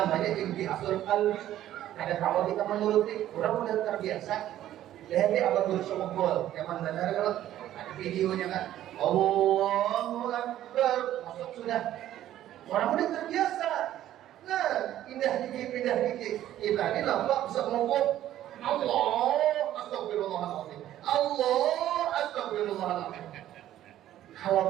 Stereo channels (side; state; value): left; quieter; 12.7 dB